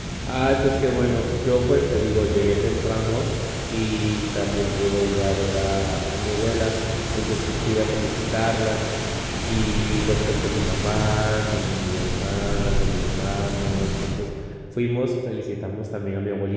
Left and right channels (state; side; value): identical; both; correlation 1.00